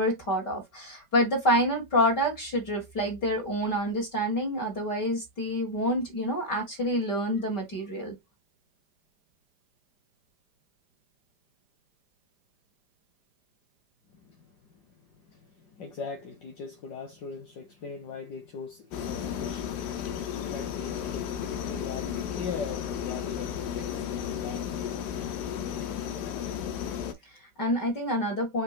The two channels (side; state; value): right; late; 5.0 ms